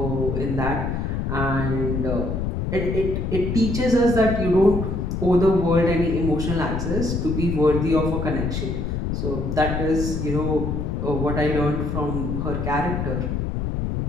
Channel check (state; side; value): noise; left; rumble, 2 dB below the sound